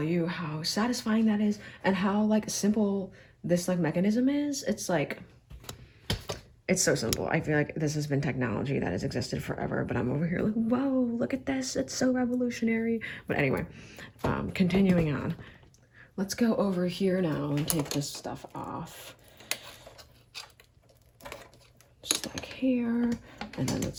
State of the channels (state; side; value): identical; both; correlation 1.00